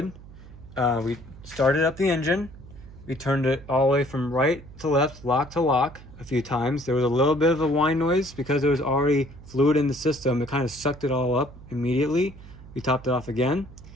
We started up the engine. We turned it all the way from right to left, lock to lock a few times. There was a little bit of a whine noise because there was already fluid in the system. It kind of sucked it all up immediately. We topped it off again.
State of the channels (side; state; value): right; noise; hum, 18 dB below the sound